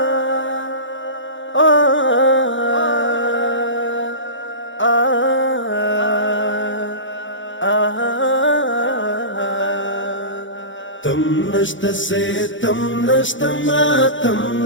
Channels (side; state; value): right; late; 0.55 ms